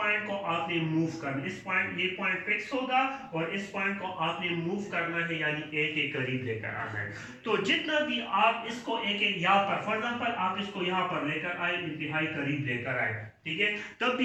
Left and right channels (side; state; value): both; identical; correlation 1.00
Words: को आपने मूव करना, इस पॉइंट ये पॉइंट फिक्स होगा और इस पॉइंट को आपने मूव करना है, यानी ए के करीब लेकर आना है। तो जितना भी आप इसको ए के यहाँ पर, फॉर एग्जाम्पल आप इसको यहाँ पर लेकर आए, इंतहाई करीब लेकर आए, ठीक है, तब